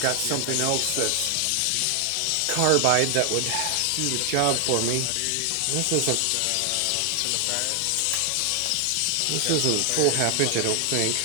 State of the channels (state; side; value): different; both; correlation 0.00